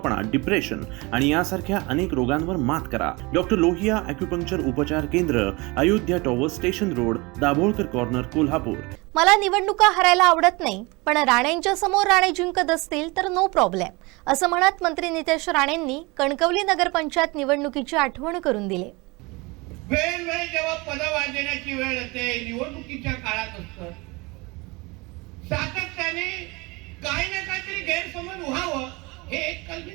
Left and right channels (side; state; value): left; quieter; 25.3 dB